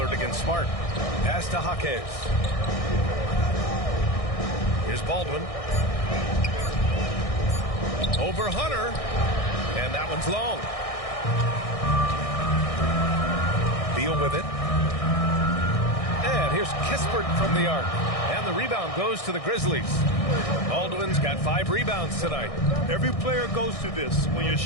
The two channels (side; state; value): right; late; 1.6 ms